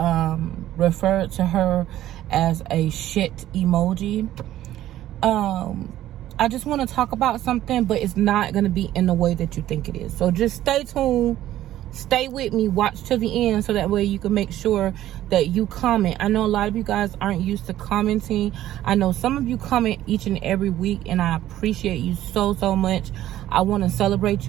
referred to her as a shit emoji. I just want to talk about something, but it's not going to be in the way that you think it is. So just stay tuned, stay with me, watch to the end, so that way you can make sure that you comment. I know a lot of you guys aren't used to commenting. I know some of you comment each and every week, and I appreciate you so much. I want to celebrate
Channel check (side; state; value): left; quieter; 13.4 dB